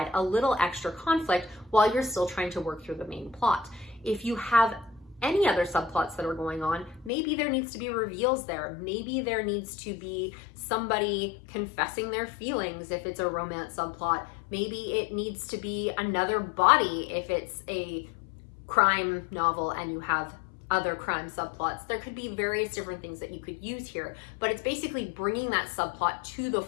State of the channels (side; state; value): right; drops out; at 7.1 s